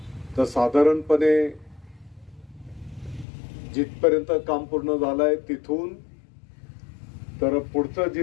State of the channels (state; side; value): drops out; right; at 3.2 s